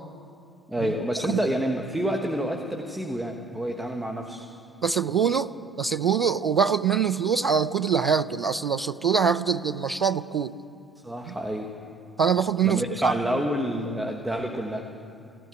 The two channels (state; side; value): quieter; left; 4.5 dB